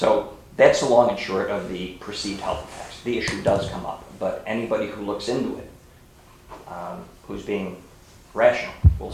that's the long and short of the perceived health effects. The issue does come up, but anybody who looks into it, who's being rational, will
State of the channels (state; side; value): identical; both; correlation 1.00